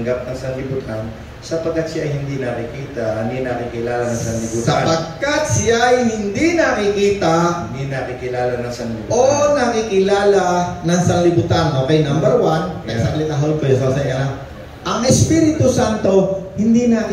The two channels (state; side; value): identical; both; correlation 1.00